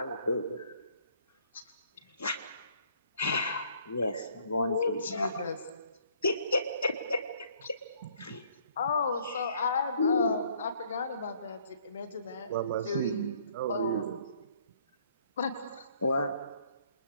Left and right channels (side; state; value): both; inverted; correlation -0.62